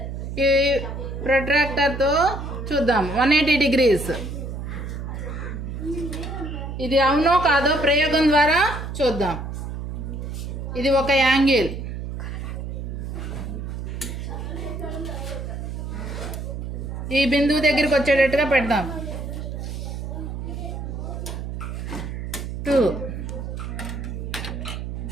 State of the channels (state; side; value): noise; right; hum, 6 dB below the sound